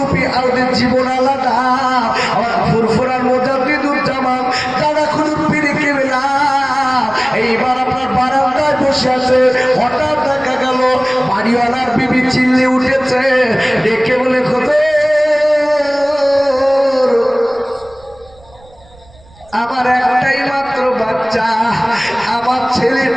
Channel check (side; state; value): right; noise; rumble, 26 dB below the sound